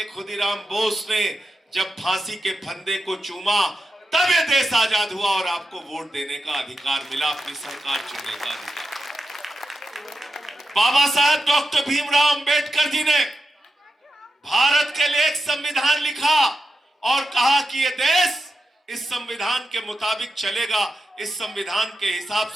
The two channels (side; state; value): both; normal; correlation 0.89